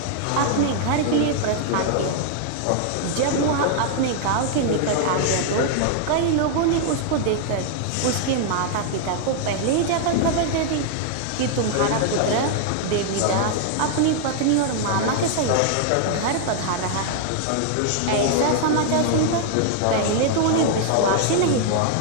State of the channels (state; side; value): different; both; correlation 0.00